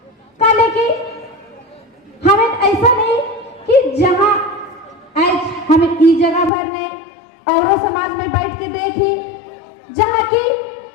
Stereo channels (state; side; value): drops out; right; at 6.5 s